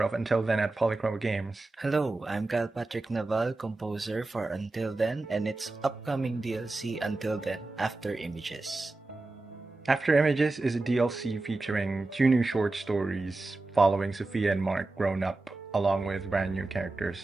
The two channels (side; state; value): left; quieter; 3.1 dB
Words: of Until Then at Polychroma Games. Hello, I'm Kyle Patrick Naval, composer for Until Then and its upcoming DLC Until Then After Images. After Images is a DLC featuring 2 new short stories following Sophia and Mark grown up along with brand new